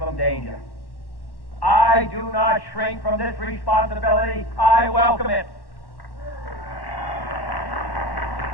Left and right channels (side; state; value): right; late; 1.1 ms